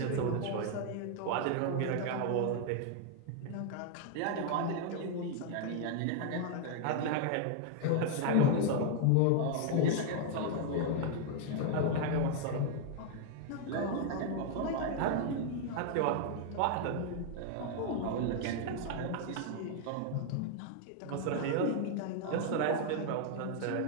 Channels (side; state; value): both; different; correlation 0.00